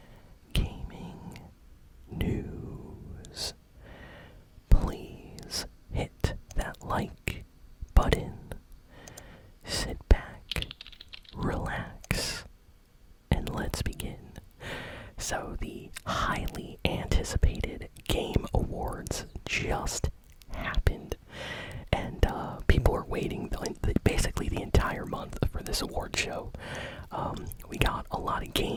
Gaming News. Please hit that like button, sit back, relax, and let's begin. So the highly anticipated Game Awards just happened, and people are waiting basically the entire month for this award show. We got a lot of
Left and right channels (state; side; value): identical; both; correlation 1.00